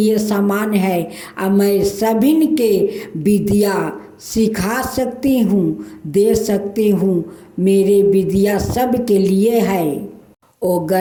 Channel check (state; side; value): identical; both; correlation 1.00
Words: समान है। अब मैं सभी के विद्या सिखा सकती हूँ, दे सकती हूँ। मेरे विद्या सब के लिए है। वो